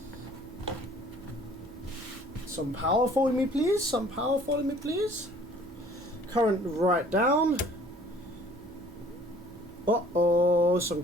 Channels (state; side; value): normal; both; correlation 0.54